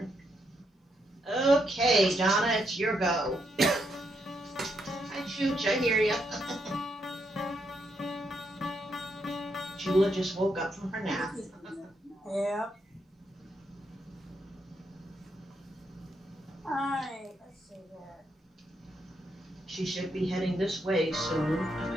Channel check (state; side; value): normal; both; correlation 0.79